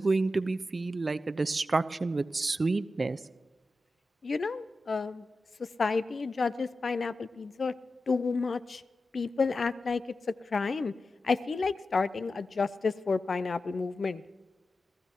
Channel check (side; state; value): both; normal; correlation 0.92